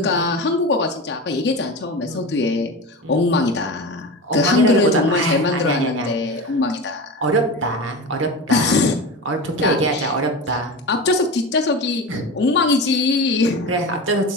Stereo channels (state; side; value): normal; both; correlation 0.27